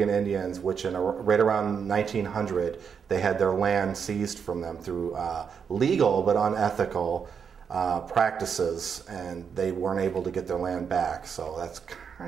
Indians, which right around 1900, they had their land seized from them through legal but unethical practices, and they weren't able to get their land back. So that's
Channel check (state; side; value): quieter; left; 6.8 dB